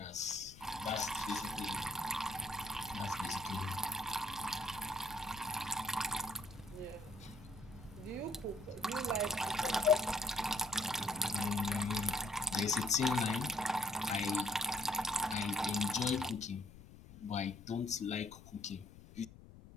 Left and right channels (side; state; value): left; noise; rumble, 18 dB below the sound